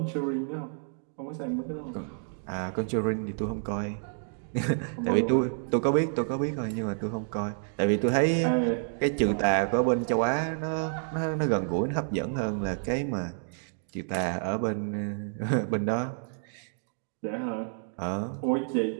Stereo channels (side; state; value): left; silent; digital silence